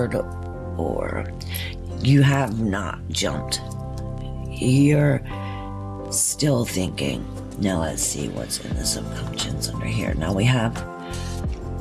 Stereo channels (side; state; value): both; identical; correlation 1.00